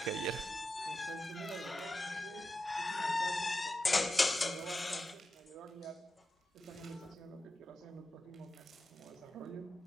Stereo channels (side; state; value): both; normal; correlation 0.90